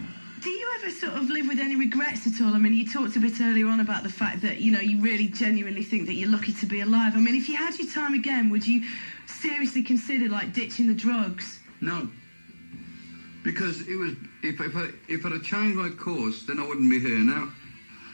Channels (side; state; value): both; inverted; correlation -1.00